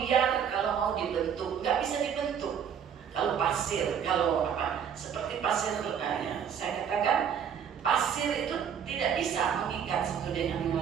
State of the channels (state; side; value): quieter; left; 8.0 dB